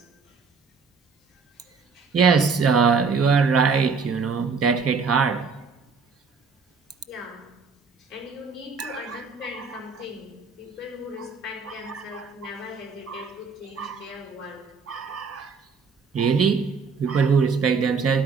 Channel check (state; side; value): quieter; left; 5.1 dB